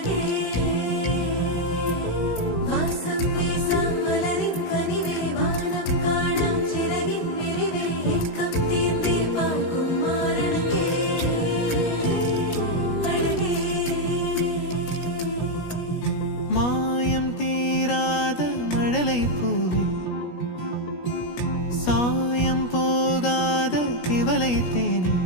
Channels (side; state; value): right; late; 17 ms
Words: வாசம் வீசாம் மலரின் கனிவே வானம் காணா சிறகின் விரிவே ஏக்கம் தீர்ந்தே பார்க்கும் மாரணகே அழகே மாயம் தீராத மழலை பூவே சாயம் போகாத திவலை தேனே